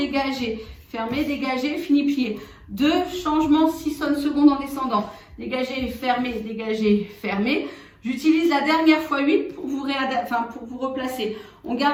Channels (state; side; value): identical; both; correlation 1.00